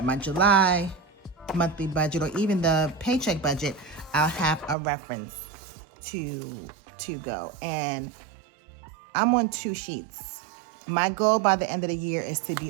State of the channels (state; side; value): drops out; left; at 4.8 s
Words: my July monthly budget or even the paycheck budget, I'll have a reference to go. And I'm on 2 sheets. My goal by the end of the year is to be